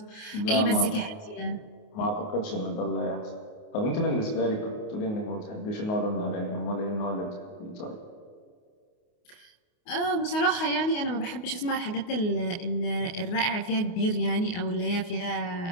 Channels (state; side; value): late; right; 29 ms